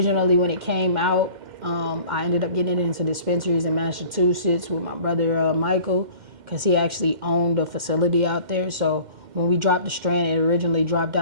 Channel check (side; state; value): left; late; 2.1 ms